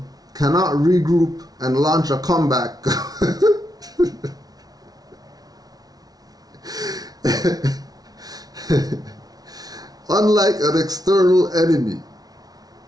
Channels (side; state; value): left; late; 0.19 ms